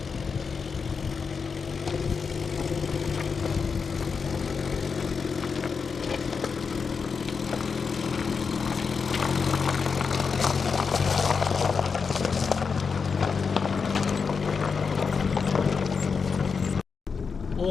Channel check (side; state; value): right; quieter; 5.4 dB